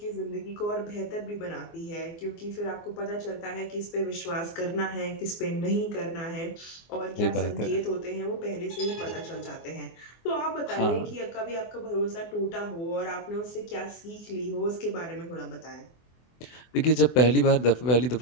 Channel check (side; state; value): right; late; 24 ms